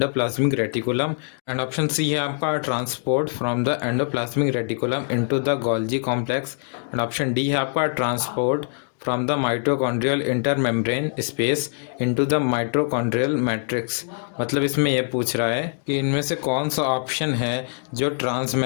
reticulum, and option C है आपका transport from the endoplasmic reticulum into the Golgi complex, and option D है आपका transport from the mitochondrial intermembrane space into the mitochondrial matrix. मतलब इसमें यह पूछ रहा है कि इनमें से कौन सा ऑप्शन है जो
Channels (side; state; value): right; silent; digital silence